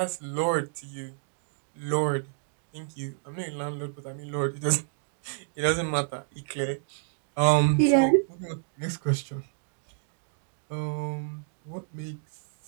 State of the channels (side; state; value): left; silent; digital silence